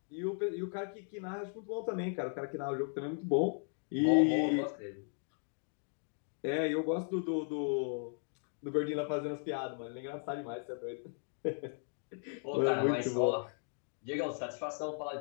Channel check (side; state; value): right; silent; 53 dB below the other